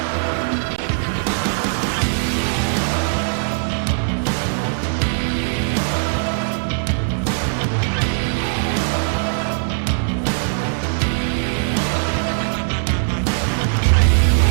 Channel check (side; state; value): left; silent; 66 dB below the other